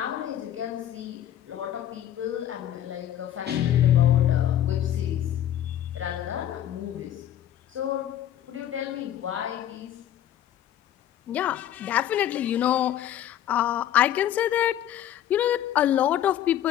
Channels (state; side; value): quieter; right; 11.4 dB